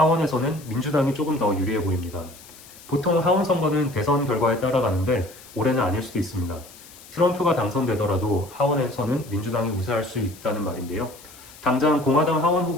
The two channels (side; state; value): left; noise; hiss, 20 dB below the sound